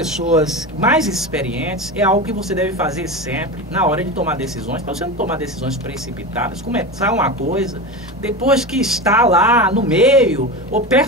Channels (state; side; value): normal; both; correlation 0.24